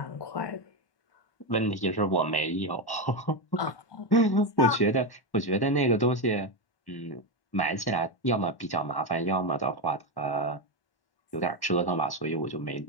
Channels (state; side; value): late; right; 1.1 ms